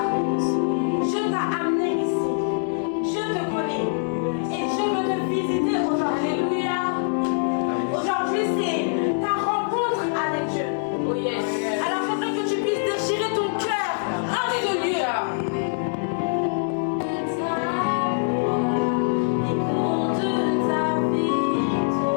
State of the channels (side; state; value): right; silent; 62 dB below the other